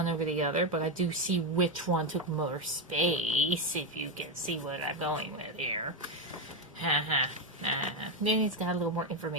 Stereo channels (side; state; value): both; normal; correlation 0.09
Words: over the other, but I do see which one took more space, if you can see what I'm going with here. Haha. Then he's got a little more